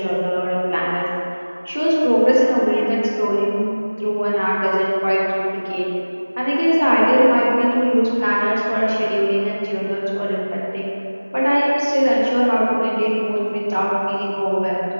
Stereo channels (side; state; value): both; inverted; correlation -1.00